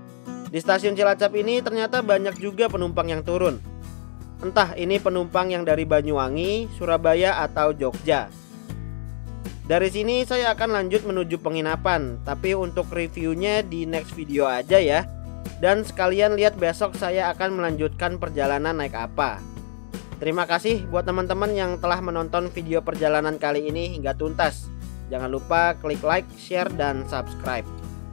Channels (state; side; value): silent; right; digital silence